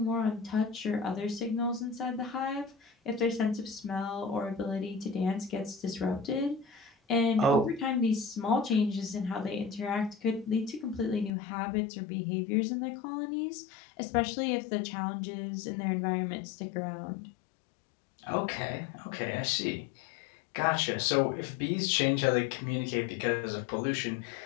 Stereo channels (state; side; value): drops out; right; at 11.3 s